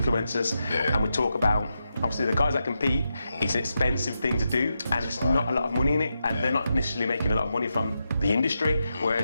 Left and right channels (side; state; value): both; inverted; correlation -0.86